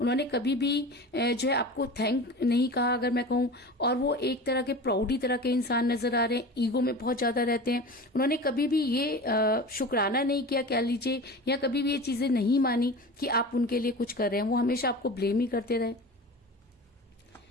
कभी भी जो है आपको थैंक नहीं कहा अगर मैं कहूं, और वो एक तरह के प्राउडी तरह के इंसान नजर आ रहे हैं, ईगो में बहुत ज्यादा रहते हैं। उन्होंने कभी भी ये शुक्राना नहीं किया कह लीजिए, या कभी भी ये चीजें नहीं मानी कि आप उनके लिए कुछ कर रहे हैं। वो हमेशा आपको ब्लेम ही करते रहे।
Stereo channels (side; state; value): both; normal; correlation 0.33